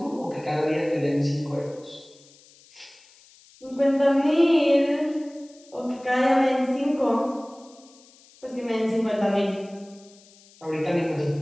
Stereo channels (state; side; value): noise; left; hiss, 27 dB below the sound